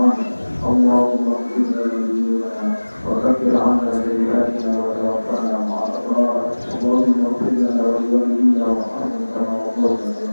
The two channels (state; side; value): inverted; both; correlation -1.00